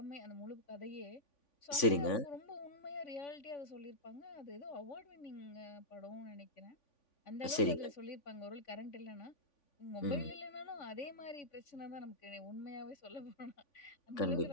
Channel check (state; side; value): late; right; 3.5 ms